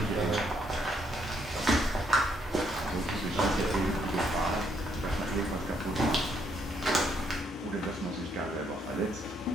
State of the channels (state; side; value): normal; both; correlation 0.72